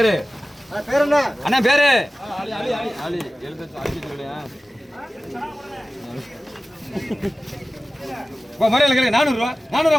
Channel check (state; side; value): normal; both; correlation 0.96